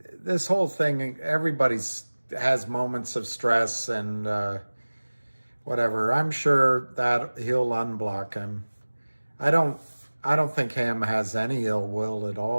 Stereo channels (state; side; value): inverted; both; correlation -1.00